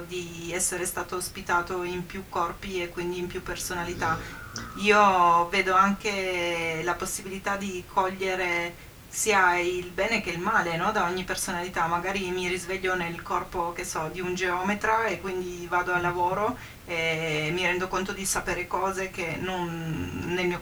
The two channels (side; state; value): both; identical; correlation 1.00